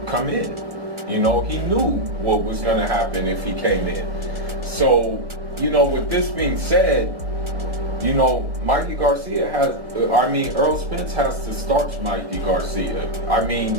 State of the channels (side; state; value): left; late; 1.4 ms